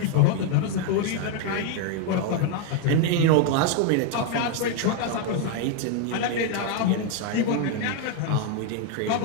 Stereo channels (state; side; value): different; both; correlation 0.01